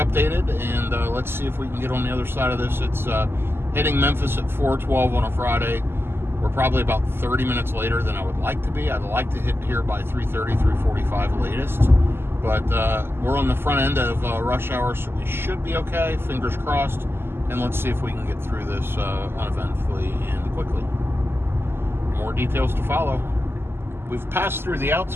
updated, and let's see if we can get on the other side of this. It's hitting Memphis at 4:12 on a Friday. We're probably about 30 minutes later than I would like to be. I'd like to hit here by 3:30, 3:45 latest. But we're on the front end of rush hour, so we should be okay. Fingers crossed. And let's see if we can get through this uneventfully and quickly. More details to follow. We've passed through the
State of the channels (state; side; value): late; left; 0.11 ms